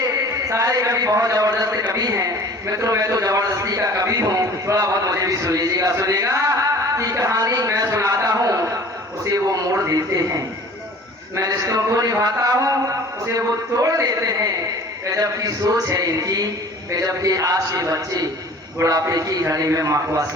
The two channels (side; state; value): both; normal; correlation 0.46